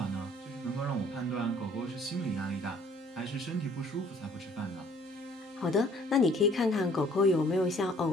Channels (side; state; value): both; normal; correlation 0.57